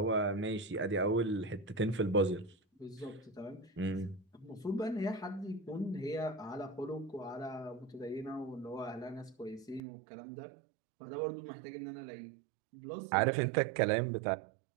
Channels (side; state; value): left; drops out; at 9.8 s